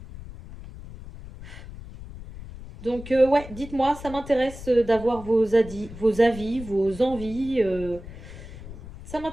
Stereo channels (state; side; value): noise; left; rumble, 14 dB below the sound